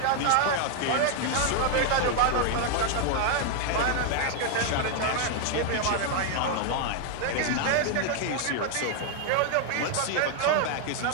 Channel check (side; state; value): both; different; correlation 0.00